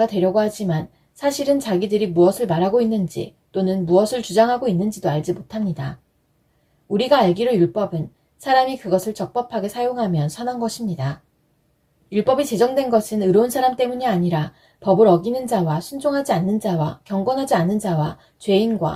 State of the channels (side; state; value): both; identical; correlation 1.00